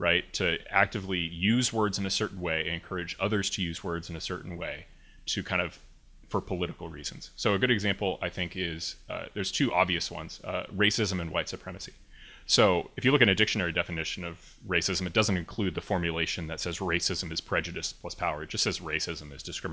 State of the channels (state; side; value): identical; both; correlation 1.00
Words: To actively use words in a certain way, encourage others to use words in a certain way to kind of for political reasons. So a good example, I think, is there's two obvious ones, racism and white supremacy. So if you look at a dictionary definition of racism, it doesn't include the formulation that says racism is prejudice plus power. It just says racism is